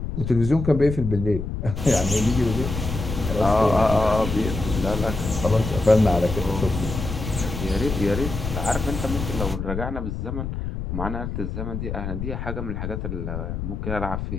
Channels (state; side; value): noise; left; rumble, 5 dB below the sound